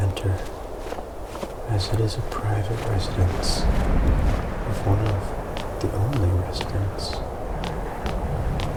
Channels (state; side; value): identical; both; correlation 1.00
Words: enter, as it is a private residence of one of the only residents